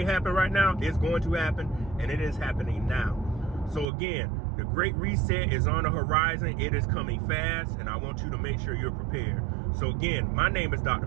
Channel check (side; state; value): left; drops out; at 3.9 s